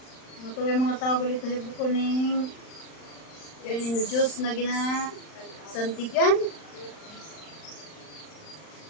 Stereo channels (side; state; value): right; late; 39 ms